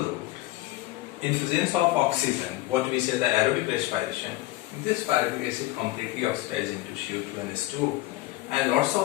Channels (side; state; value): right; quieter; 17.9 dB